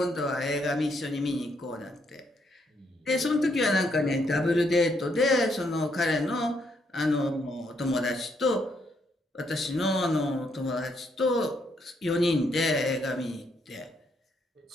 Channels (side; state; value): both; normal; correlation 0.74